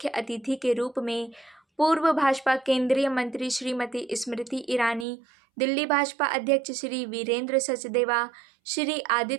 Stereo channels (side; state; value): left; drops out; at 5.1 s